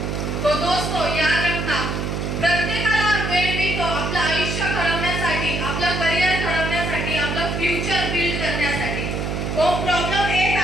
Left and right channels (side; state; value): right; noise; hum, 2 dB below the sound